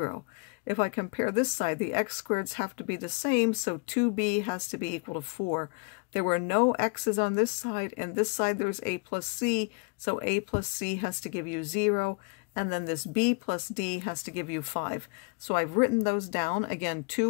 If I compare this side, the x squareds have to be the same, so 2b has to be equal to 4. There were no x's on this side, and this side there's a plus c, so a plus c has to give you 0, and then this b plus d has to give you 5. So I've written those down. Again,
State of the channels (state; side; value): quieter; right; 33.4 dB